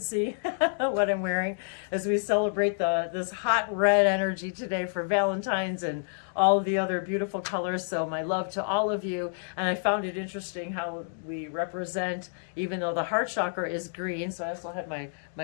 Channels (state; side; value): silent; right; digital silence